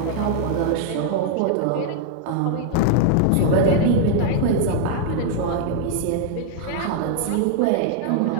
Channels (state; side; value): different; both; correlation 0.00